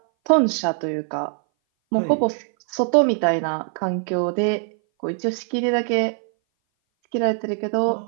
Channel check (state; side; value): silent; left; 59 dB below the other